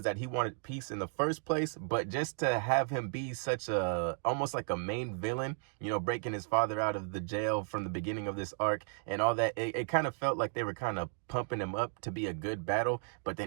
that he wanted peace in the first place, but just to have him be such a, almost like a main villain, you know, breaking his father out of the jail from the beginning of this arc and all that, it kind of felt like they were kind of pumping him up to be a good battle, but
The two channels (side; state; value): left; silent; 55 dB below the other